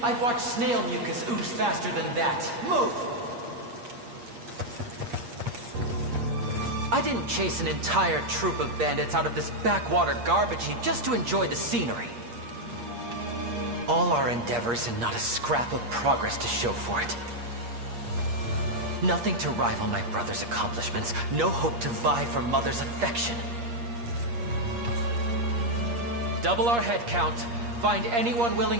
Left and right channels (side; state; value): left; late; 8.5 ms